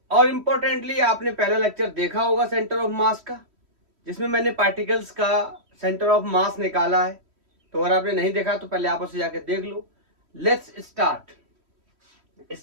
और इंपॉर्टेंटली आपने पहला लेक्चर देखा होगा सेंटर ऑफ मास का, जिसमें मैंने पार्टिकल्स का सेंटर ऑफ मास निकाला है। तो अगर आपने नहीं देखा तो पहले आप उसे जाके देख लो। लेट्स स्टार्ट,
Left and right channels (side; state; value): left; late; 3.1 ms